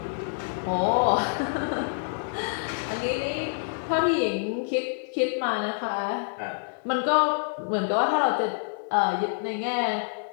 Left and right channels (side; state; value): right; silent; digital silence